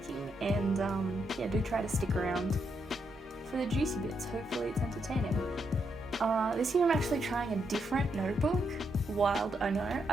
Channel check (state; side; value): normal; both; correlation 0.79